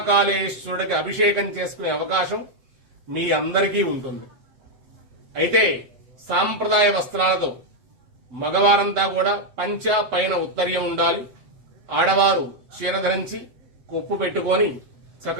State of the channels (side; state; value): left; late; 8.1 ms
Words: అభిషేకం చేసుకునే అవకాశం మీ అందరికీ ఉంటుంది. అయితే సాంప్రదాయ వస్త్రాలతో మగవారంతా కూడా పంచ పైన ఉత్తరీయం ఉండాలి. ఆడవారు చీర ధరించి కొప్పు పెట్టుకొని